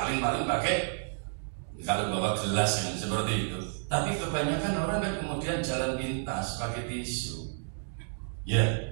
pakai kalau bawa gelas yang seperti itu. Tapi kebanyakan orang kan kemudian jalan pintas pakai tisu. Ya.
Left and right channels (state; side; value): silent; left; digital silence